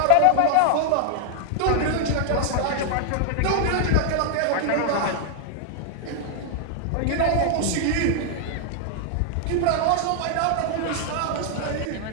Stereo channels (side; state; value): both; different; correlation 0.00